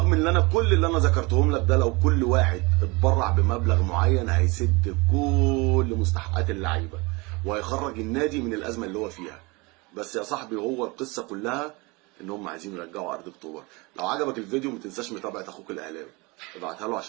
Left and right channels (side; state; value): left; quieter; 26.0 dB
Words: ان انا كل اللي انا ذكرتهم لك ده لو كل واحد اتبرع بمبلغ معين هيسد كل مستحقات اللعيبه وهيخرج النادي من الازمه اللي هو فيها. بس يا صاحبي هو القصه كلها ان هم عايزين يرجعوا ارض اكتوبر. لو عجبك الفيديو ما تنساش متابعه اخوك الاهلاوي، ابعتها له